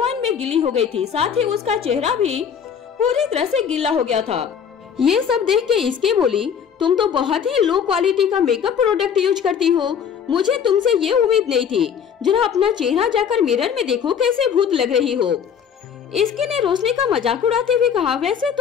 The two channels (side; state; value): right; quieter; 7.6 dB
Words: में गीली हो गई थी। साथ ही उसका चेहरा भी पूरी तरह से गीला हो गया था। ये सब देख के इसके बोली, तुम तो बहुत ही लो क्वालिटी का मेकअप प्रोडक्ट यूज करती हो, मुझे तुमसे ये उम्मीद नहीं थी। जरा अपना चेहरा जाकर मिरर में देखो कैसे भूत लग रही हो। इसके ने रोशनी का मजाक उड़ाते हुए कहा, वैसे